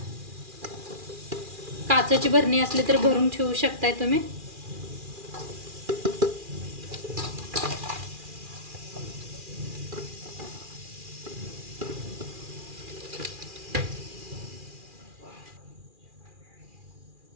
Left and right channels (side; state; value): left; late; 2.4 ms